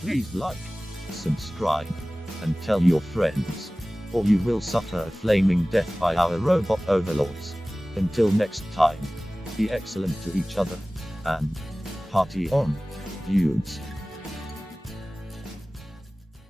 like, subscribe, and tell your friends, or you will suffer a flaming death by our robot overlords. Until next time, be excellent to each other, and party on, dudes.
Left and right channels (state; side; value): normal; both; correlation 0.98